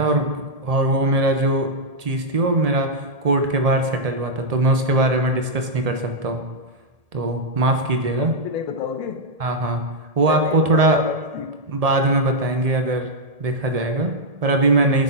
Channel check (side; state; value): left; late; 1.8 ms